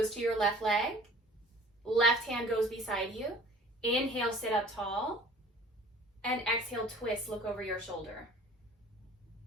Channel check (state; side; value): normal; both; correlation 0.48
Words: to your left leg. Left hand goes beside you. Inhale, sit up tall. And exhale, twist, look over your shoulder.